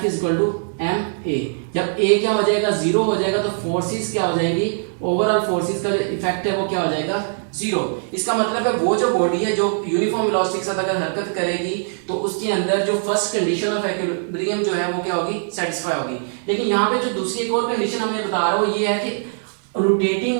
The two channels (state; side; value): silent; left; 65 dB below the other